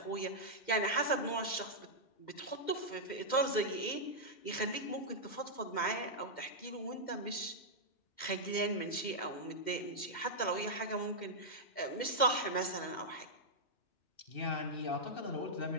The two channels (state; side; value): late; right; 2.1 ms